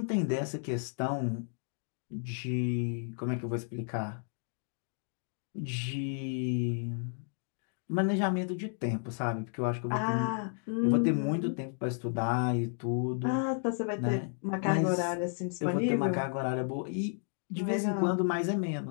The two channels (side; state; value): right; silent; 56 dB below the other